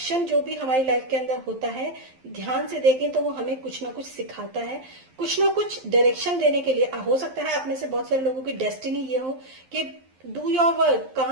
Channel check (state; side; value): late; left; 11 ms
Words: जो भी हमारी लाइफ के अंदर होता है, ध्यान से देखें तो वो हमें कुछ ना कुछ सिखाता है, कुछ ना कुछ डायरेक्शन देने के लिए। हो सकता है आप में से बहुत सारे लोगों की डेस्टिनी ये हो कि डू योर वर्क,